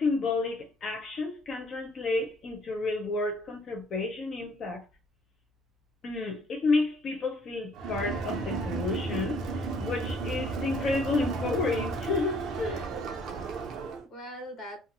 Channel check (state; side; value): normal; both; correlation 0.61